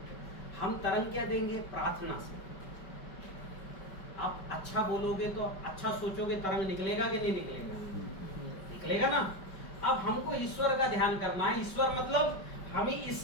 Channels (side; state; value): right; late; 5.2 ms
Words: हम तरंग क्या देंगे? प्रार्थना से। आप अच्छा बोलोगे तो, अच्छा सोचोगे, तरंग निकलेगा कि नहीं निकलेगा? निकलेगा ना। अब हमको ईश्वर का ध्यान करना है, ईश्वर मतलब हमें